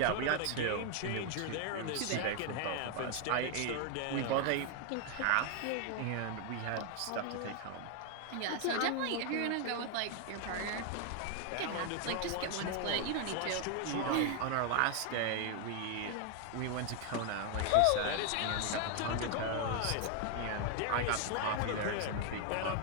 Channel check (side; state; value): both; different; correlation 0.00